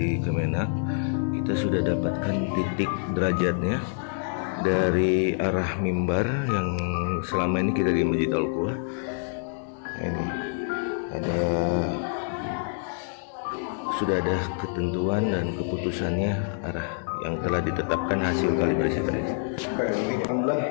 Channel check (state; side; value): silent; right; 60 dB below the other